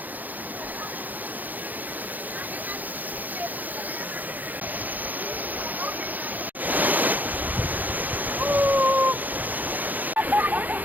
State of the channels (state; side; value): late; left; 0.083 ms